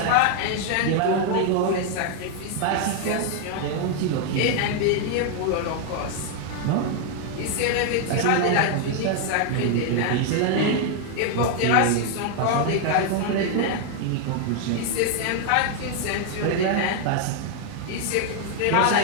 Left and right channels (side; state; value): both; different; correlation 0.00